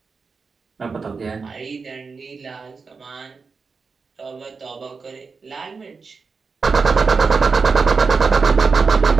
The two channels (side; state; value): left; quieter; 4.8 dB